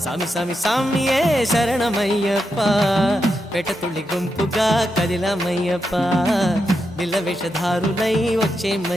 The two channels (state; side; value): normal; both; correlation 0.86